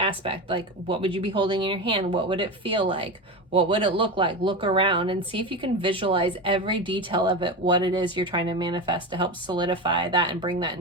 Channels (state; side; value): normal; both; correlation 0.22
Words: Like, what would you be holding in your hand? What would it feel like? What would it look like? Look around and see if you can visualize every detail of it, what it is you're trying to manifest, to help solidify that and bring that